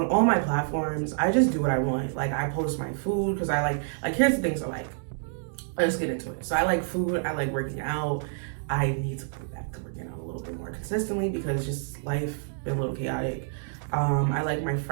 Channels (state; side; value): silent; left; digital silence